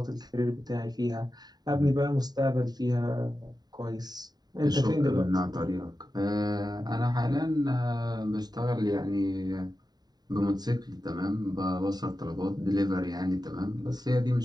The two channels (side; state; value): left; late; 0.20 ms